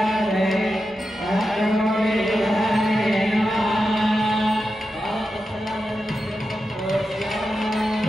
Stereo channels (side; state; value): both; normal; correlation 0.90